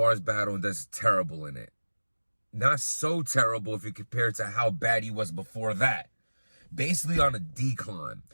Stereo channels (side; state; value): both; inverted; correlation -1.00